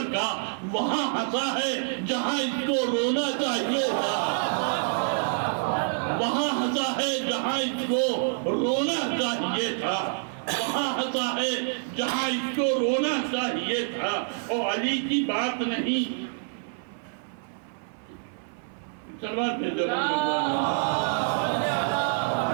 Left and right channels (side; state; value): left; silent; 58 dB below the other